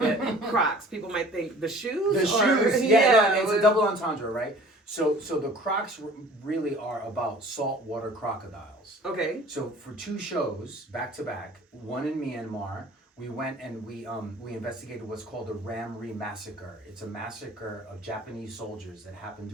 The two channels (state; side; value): normal; both; correlation 0.48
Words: Crocs, people might think the shoes? The shoes, yeah. No, it's a double entendre, right? So the Crocs really are about saltwater crocodiles. Okay. So for 2 shows back to back, one in Myanmar, we went and we investigated what's called the Ram Re massacre. It's a massacre of Japanese soldiers that happened